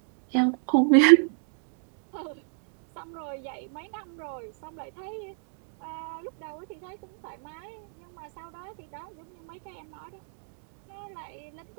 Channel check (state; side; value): silent; left; 58 dB below the other